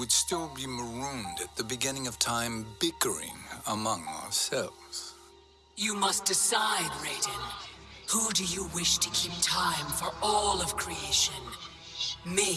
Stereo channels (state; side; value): identical; both; correlation 1.00